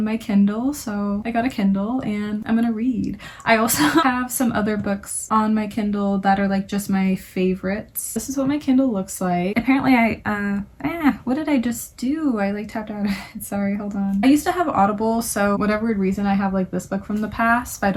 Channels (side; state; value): both; identical; correlation 1.00